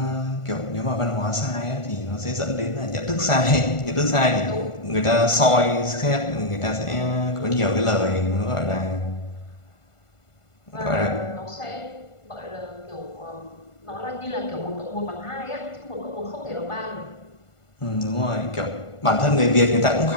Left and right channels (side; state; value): right; late; 1.5 ms